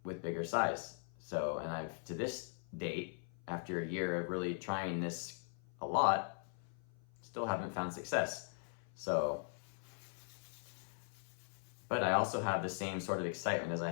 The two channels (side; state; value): right; silent; 51 dB below the other